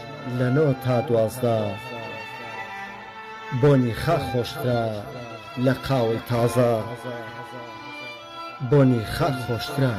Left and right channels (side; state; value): both; identical; correlation 1.00